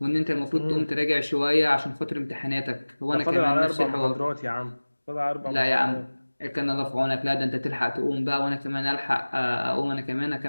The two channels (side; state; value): both; inverted; correlation -1.00